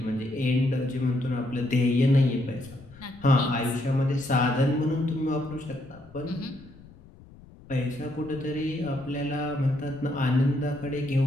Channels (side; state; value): left; noise; rumble, 22 dB below the sound